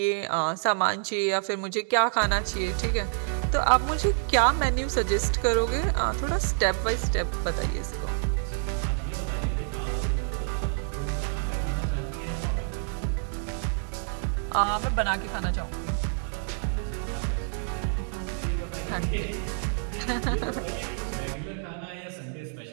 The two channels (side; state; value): left; silent; 56 dB below the other